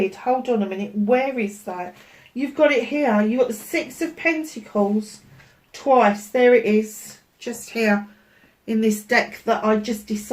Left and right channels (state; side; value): identical; both; correlation 1.00